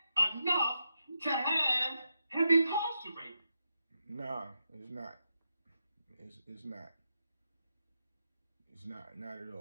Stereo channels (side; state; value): both; inverted; correlation -0.85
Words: enough to have him incarcerated? Nah, it's not. It's not. It's not at